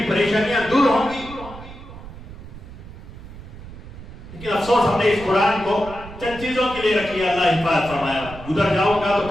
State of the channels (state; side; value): noise; right; rumble, 14 dB below the sound